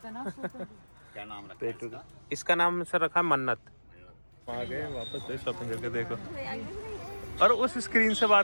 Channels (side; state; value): both; inverted; correlation -1.00